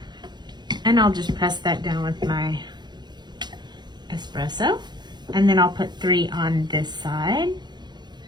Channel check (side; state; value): left; late; 0.21 ms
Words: And I'll just press that down with my espresso. And then I'll put 3 on this side.